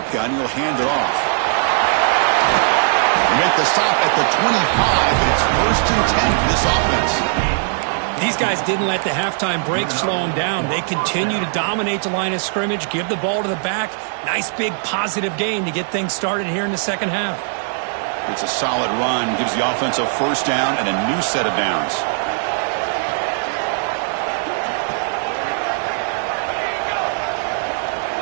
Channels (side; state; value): left; silent; digital silence